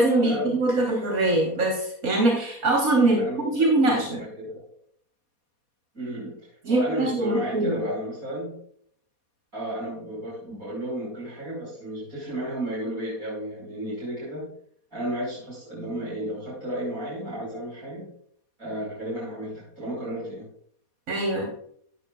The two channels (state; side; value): late; left; 4.2 ms